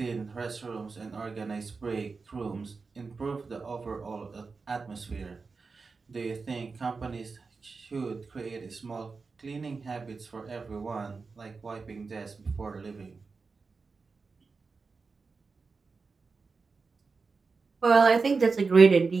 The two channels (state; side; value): quieter; left; 4.5 dB